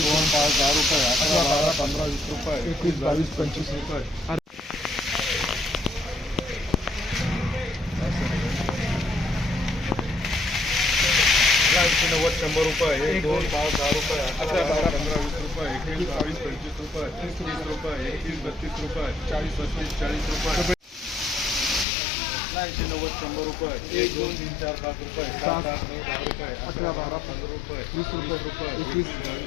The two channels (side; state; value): right; drops out; at 21.9 s